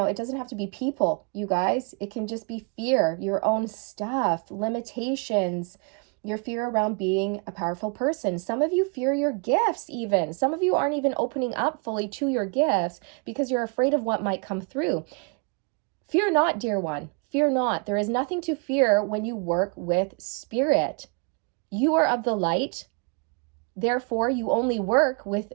doesn't have to be people, you guys. It can just be fear, your own stuff, limitations, your fear around being a powerful person. Some of you fear your gifts even. Some of you aren't even opening up fully to your gifts because you're afraid of what might come through. Fear not, dear one. Fear not. There is nothing to fear when you work with spirit. You are of the light. Therefore, you only work with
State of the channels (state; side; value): quieter; left; 35.0 dB